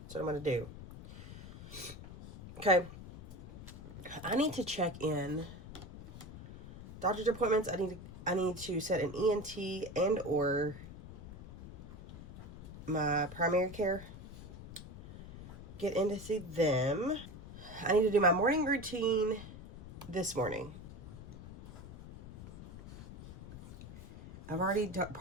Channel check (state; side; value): noise; left; rumble, 13 dB below the sound